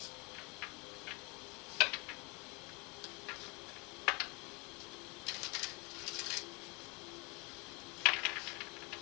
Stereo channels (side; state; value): right; quieter; 29.3 dB